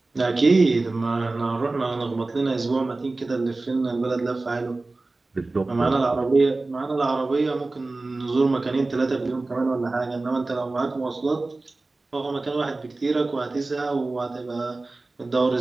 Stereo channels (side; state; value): left; quieter; 3.3 dB